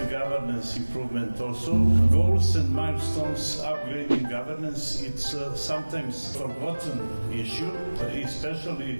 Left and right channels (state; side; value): inverted; both; correlation -1.00